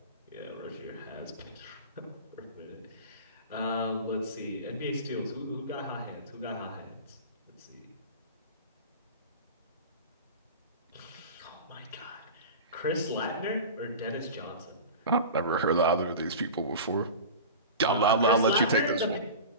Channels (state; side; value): inverted; both; correlation -0.33